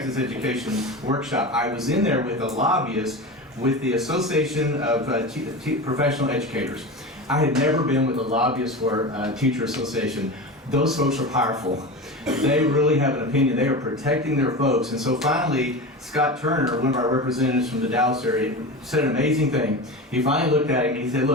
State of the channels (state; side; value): normal; both; correlation 0.27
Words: education workshop. I was in there with a lobbyist with the Association of Professional Educators. I had never been with a lobbyist for a teacher association. Those folks are powerful. They really have an opinion. They are protecting their folks. And so finally, Scott Turner, one of our representatives from the Dallas area, said an amazing thing. He finally looked at him and he said,